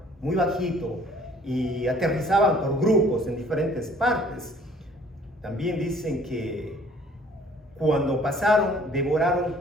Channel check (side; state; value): both; normal; correlation 0.56